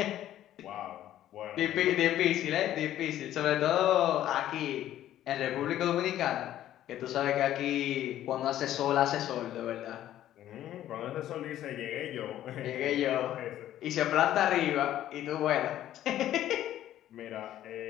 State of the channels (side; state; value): right; quieter; 12.5 dB